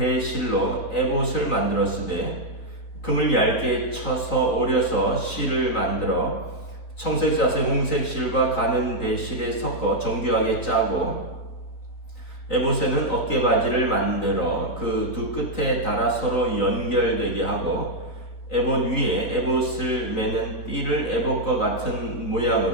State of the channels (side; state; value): right; late; 4.0 ms